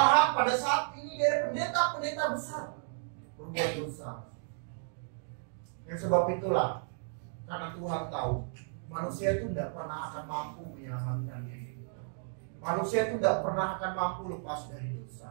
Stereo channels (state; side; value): silent; left; digital silence